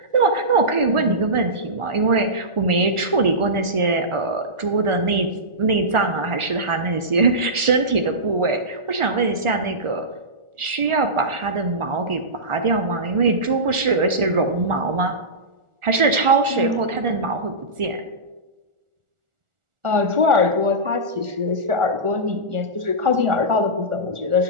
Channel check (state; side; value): late; left; 1.4 ms